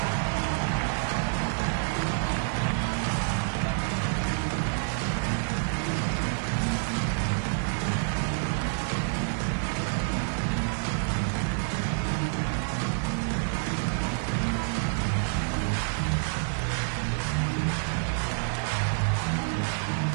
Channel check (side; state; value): left; silent; digital silence